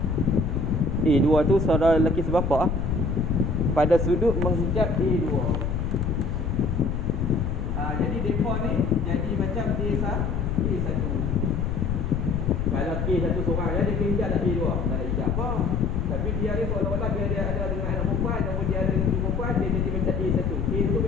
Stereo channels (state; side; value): noise; left; rumble, 1 dB below the sound